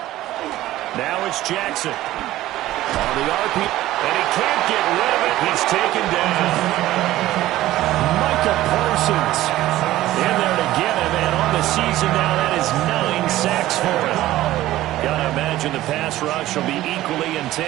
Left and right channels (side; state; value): left; quieter; 15.3 dB